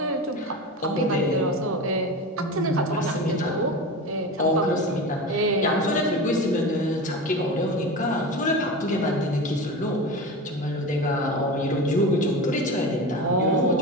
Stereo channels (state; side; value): normal; both; correlation 0.27